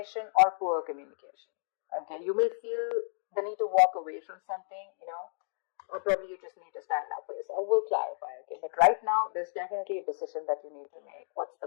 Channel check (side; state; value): right; silent; digital silence